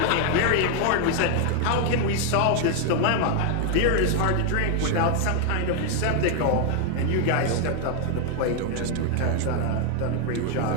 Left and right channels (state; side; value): different; both; correlation 0.00